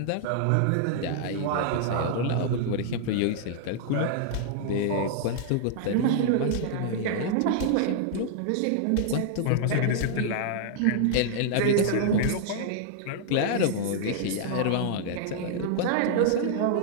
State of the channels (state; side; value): different; both; correlation -0.01